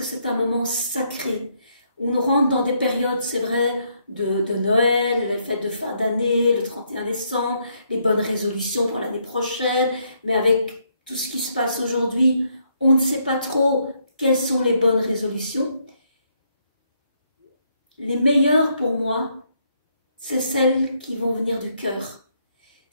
c'est un moment sacré. On rentre dans des périodes, c'est vrai, de Noël, les fêtes de fin d'année, le 31 décembre, les bonnes résolutions pour l'année prochaine, mais avec tout ce qui se passe aujourd'hui, on ne sait pas trop quelles sont les bonnes résolutions. Les meilleures pour moi, c'est celles qui vont venir du cœur,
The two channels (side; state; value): both; inverted; correlation -0.73